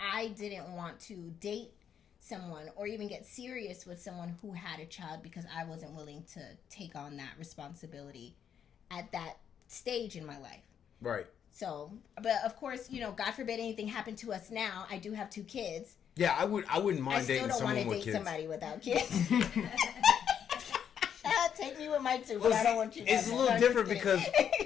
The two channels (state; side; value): quieter; right; 8.4 dB